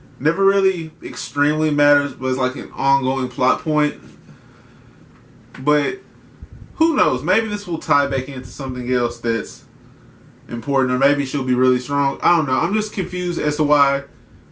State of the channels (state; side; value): identical; both; correlation 1.00